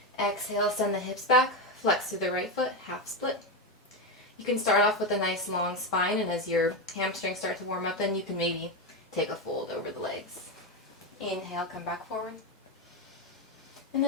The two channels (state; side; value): normal; both; correlation 0.12